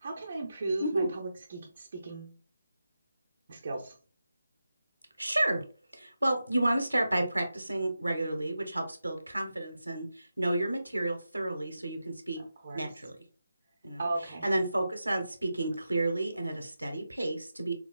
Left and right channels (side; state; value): both; inverted; correlation -0.90